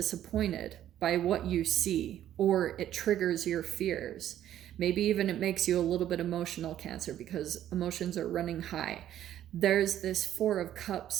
by what you see, or it triggers your fears. Maybe even it makes you a little bit emotional Cancer because emotions are running high. There's this Four of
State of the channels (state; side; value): quieter; left; 11.7 dB